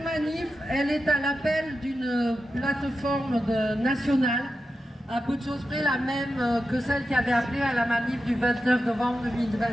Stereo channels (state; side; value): normal; both; correlation 0.90